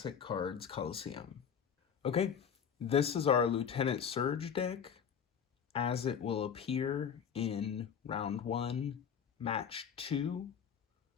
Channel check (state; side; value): quieter; right; 7.5 dB